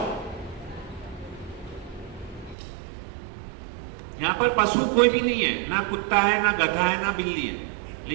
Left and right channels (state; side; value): drops out; left; at 2.6 s